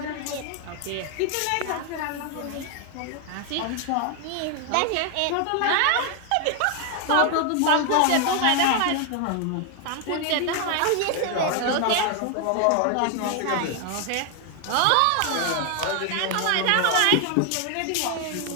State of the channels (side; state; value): both; different; correlation 0.01